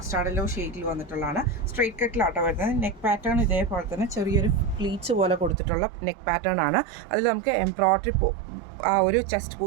യെല്ലോ ഷെയ്ഡിൽ വന്നിട്ടുള്ളതാണ്. സ്ട്രൈറ്റ് കട്ടിലാട്ടോ വരുന്നത്. നെക്ക് പാറ്റേൺ ഇതേപോലെ തന്നെ ചെറിയൊരു പ്ലീറ്റ്സ് പോലെ കൊടുത്തിട്ടുള്ള നെക്ക് പാറ്റേൺ ആണ്. അതിൽ നമുക്ക് എംബ്രോയിഡറി ആ ഒരു ചെസ്റ്റ്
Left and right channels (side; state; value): left; drops out; at 5.6 s